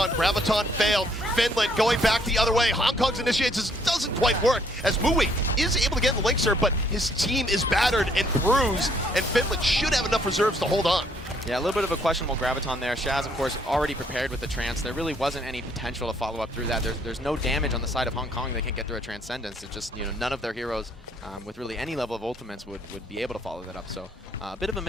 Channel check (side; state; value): both; normal; correlation 0.66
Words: Graviton failed. Finland going back the other way. Hong Kong's initiates doesn't quite work as Mui is able to get in the Linkser, but his team is battered and bruised, and Finland should have enough reserves to hold on. Yeah, a little bit of a questionable Graviton there. Shaz, of course, already prepared with the Trance. There really wasn't any potential to follow up through that. There's no damage on the side of Hong Kong. They can't get through a Transcendence. It's just, you know, none of their heroes with really any level of ultimates would be able to follow that up. So a bit of a